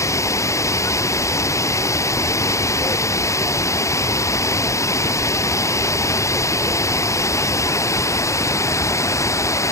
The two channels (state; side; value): late; right; 0.15 ms